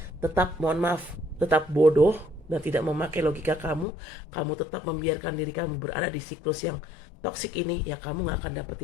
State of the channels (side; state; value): right; drops out; at 3.9 s